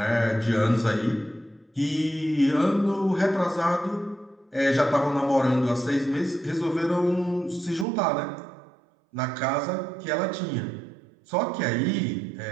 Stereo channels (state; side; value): drops out; left; at 7.9 s